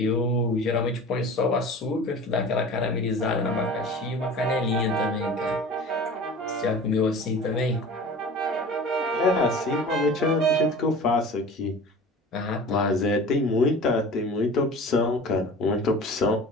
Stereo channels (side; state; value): both; normal; correlation 0.39